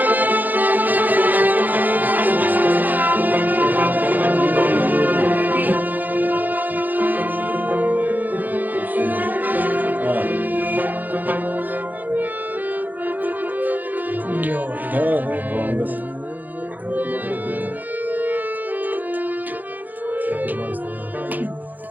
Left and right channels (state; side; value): late; left; 0.084 ms